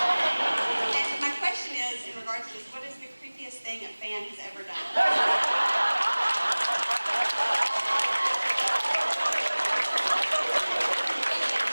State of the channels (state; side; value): inverted; both; correlation -1.00